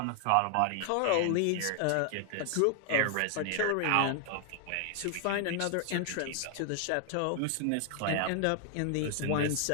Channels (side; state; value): both; different; correlation 0.00